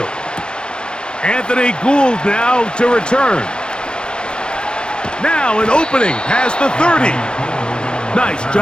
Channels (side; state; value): right; late; 0.050 ms